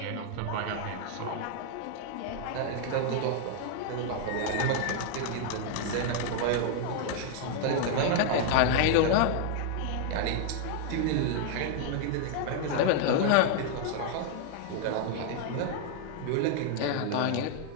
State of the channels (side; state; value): both; different; correlation 0.00